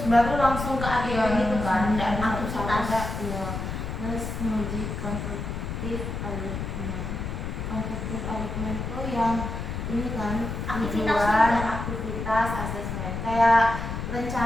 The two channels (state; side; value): noise; left; rumble, 4 dB below the sound